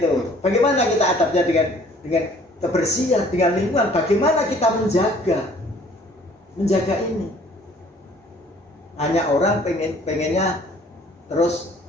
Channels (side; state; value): both; normal; correlation 0.56